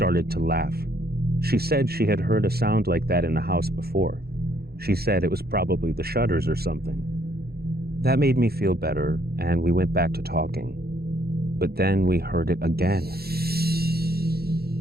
to laugh. She said she had heard a sound like that in the house before. She said it was probably the shutters or something. That made me feel better, and we went back to talking. But then we heard it again.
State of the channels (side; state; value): left; late; 0.46 ms